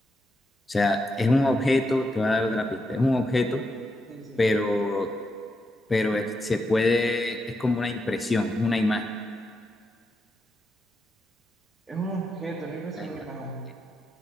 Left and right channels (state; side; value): normal; both; correlation 0.84